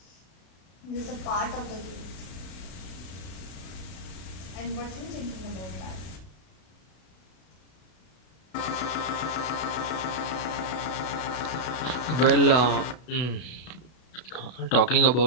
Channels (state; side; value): late; right; 32 ms